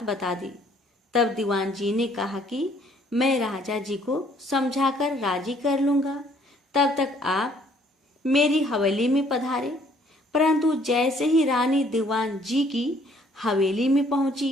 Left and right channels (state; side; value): normal; both; correlation 0.62